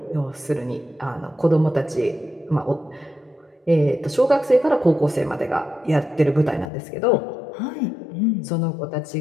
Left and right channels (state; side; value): drops out; right; at 6.7 s